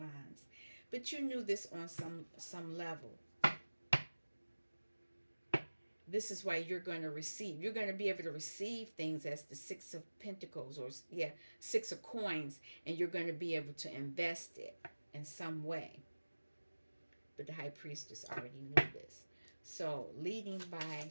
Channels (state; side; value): inverted; both; correlation -1.00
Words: But you knew this on some level. This is why you're going to receive. You're going to be able to receive things as the 6 of Pentacles, or 6 of Coins, and you're going to be able to invest it in some way. But the High Priestess already knew this. So, leading